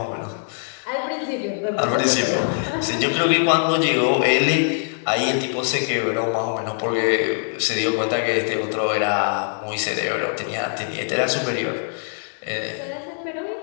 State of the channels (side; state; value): right; silent; 64 dB below the other